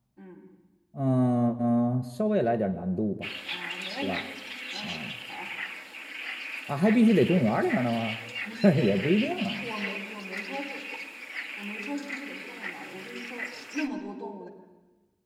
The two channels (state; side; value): identical; both; correlation 1.00